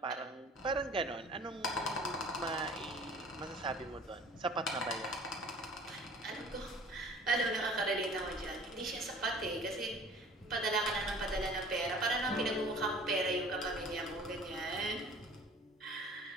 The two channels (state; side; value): normal; both; correlation 0.47